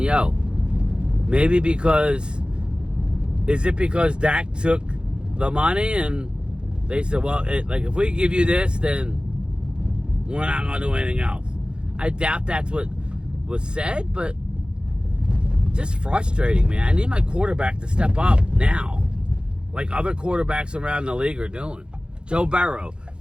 "Yo, maybe is it because Dak took the money?" And they said, "Well, if we give you this, then we're not gonna do anything else." I doubt that's what was said, but just frustrating, man. I need my quarterback to step up now, like other quarterbacks around the league are doing. Joe Burrow.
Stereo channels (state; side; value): late; left; 0.052 ms